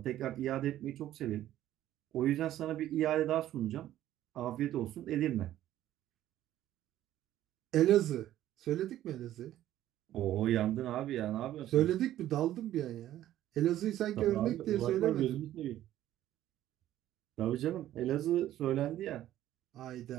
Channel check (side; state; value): left; quieter; 13.0 dB